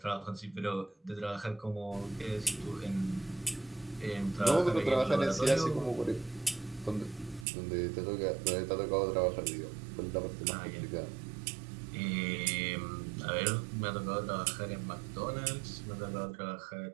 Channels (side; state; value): left; drops out; at 7.5 s